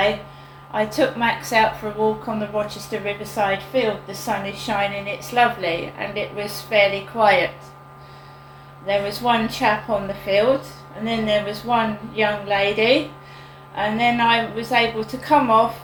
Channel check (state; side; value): identical; both; correlation 1.00